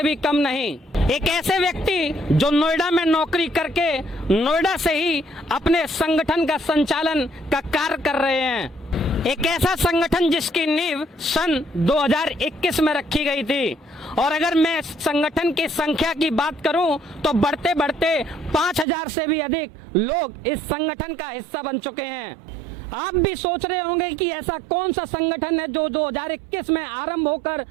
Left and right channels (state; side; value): drops out; left; at 18.9 s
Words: भी कम नहीं। एक ऐसे व्यक्ति जो नोएडा में नौकरी करके नोएडा से ही अपने संगठन का संचालन का कार्य कर रहे हैं। एक ऐसा संगठन जिसकी नींव सन 2021 में रखी गई थी, और अगर मैं संगठन की संख्या की बात करूं तो बढ़ते बढ़ते 5000 से भी अधिक लोग इस संगठन का हिस्सा बन चुके हैं। आप भी सोच रहे होंगे कि ऐसा कौन सा संगठन है जो 2021 में आरंभ होकर